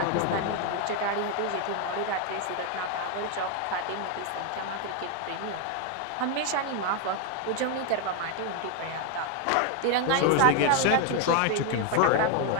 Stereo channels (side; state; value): both; different; correlation 0.01